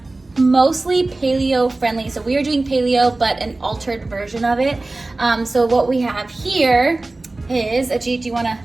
mostly paleo friendly. So we are doing paleo, but an altered version of it. So what we have here is, Ajeet, do you want to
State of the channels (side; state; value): left; quieter; 3.1 dB